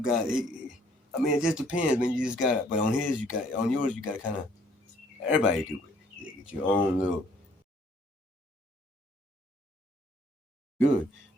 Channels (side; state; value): both; normal; correlation 0.62